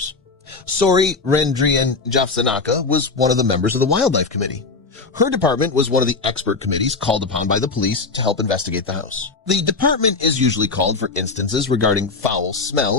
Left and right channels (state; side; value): quieter; right; 4.0 dB